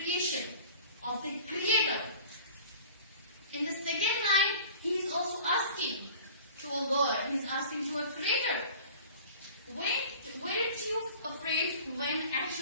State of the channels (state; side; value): inverted; both; correlation -0.43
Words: of the creator. In the second line, he is also asking to a God. He is asking to a creator. Weren't you afraid when